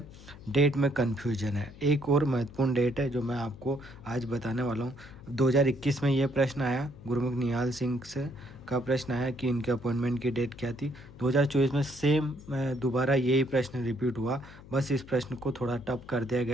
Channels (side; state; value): left; noise; hum, 18 dB below the sound